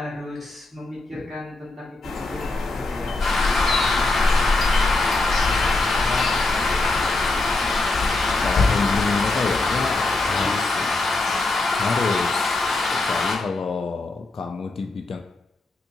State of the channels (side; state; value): right; quieter; 3.1 dB